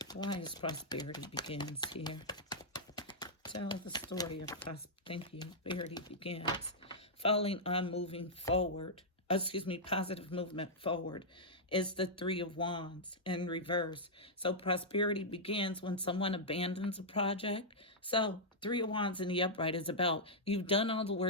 Why is prosperity begins here? Tell the story of prosperity begins. Falling on moving forward, positive movement forward is the Three of Wands in reverse. So prosperity begins when someone abandons a project. So Three of Wands in the upright is about you've done all the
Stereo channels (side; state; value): both; normal; correlation -0.08